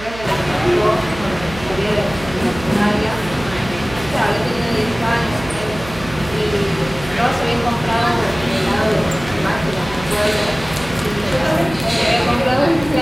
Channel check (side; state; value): right; noise; hum, 14 dB below the sound